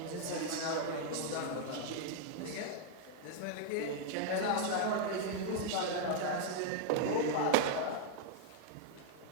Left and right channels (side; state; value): both; different; correlation -0.01